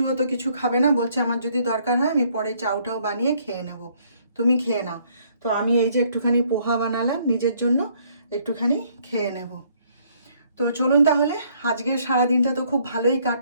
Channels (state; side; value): inverted; both; correlation -0.65